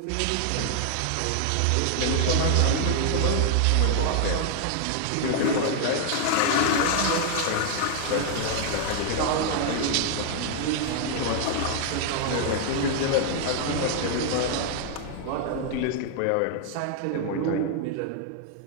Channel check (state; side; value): different; both; correlation 0.00